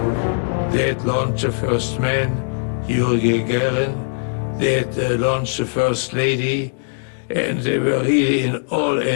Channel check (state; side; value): silent; right; digital silence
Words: They had launched the first man, Yuri Gagarin. They had launched the first lady, and they were really in all